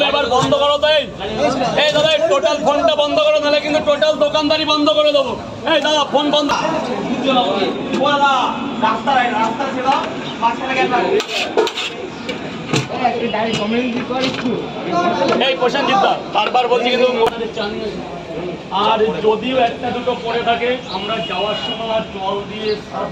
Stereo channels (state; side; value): identical; both; correlation 1.00